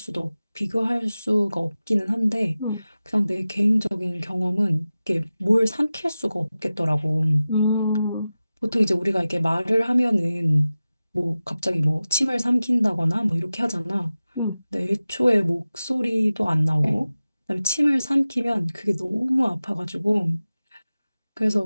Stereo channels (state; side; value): inverted; both; correlation -0.95